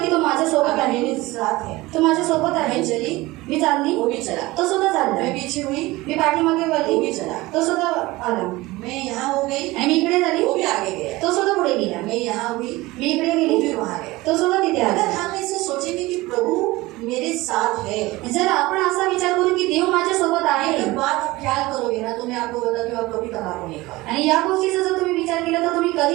तो माझ्या सोबत आहे, मेरे साथ है, तो माझ्या सोबत आहे, मैं चली मी चालली, वो भी चला, तो सुद्धा चालला, मैं पीछे हुई, मी पाठीमागे वो वळली, भी चला, तो सुद्धा आला, मैं यहाँ हो गई, आणि मी इकडे झाली, वो भी आगे गया, तो सुद्धा पुढे गेला, मैं यहाँ हुई, मी इकडे वो गेली, भी वहाँ गया. तो सुद्धा तिथे अगर आला. हम ऐसे सोचेंगे कि प्रभु मेरे साथ है, जर आपण असा विचार करू की देव माझ्या सोबत आहे, एक बात आप ख्याल करोगे ना, तो मैं आपको बताती हूँ, आप कभी तंबाकू नहीं खाओ. आणि या गोष्टीचा जर तुम्ही विचार केला तर तुम्ही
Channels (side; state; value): left; quieter; 20.1 dB